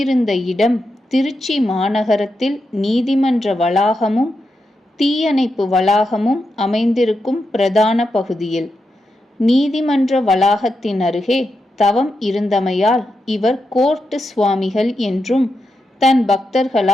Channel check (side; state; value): both; normal; correlation 0.86